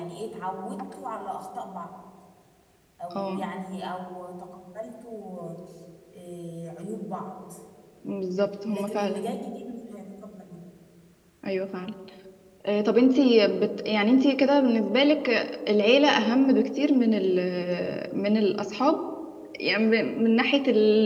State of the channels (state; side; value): identical; both; correlation 1.00